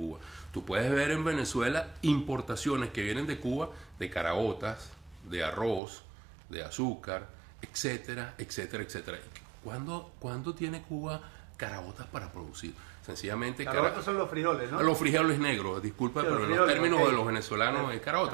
Tú puedes ver en Venezuela importaciones que vienen de Cuba de caraotas, de arroz, de azúcar, etcétera, etcétera, etcétera. ¿Cuándo tiene Cuba caraotas para producir? Sencillamente caraotas son los frijoles, ¿no? Los frijoles negros, disculpa, sí, pero en los términos de los venezolanos es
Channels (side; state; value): left; drops out; at 5.8 s